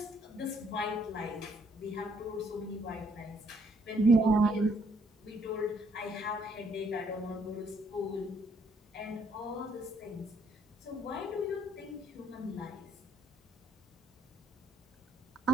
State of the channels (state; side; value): normal; both; correlation 0.67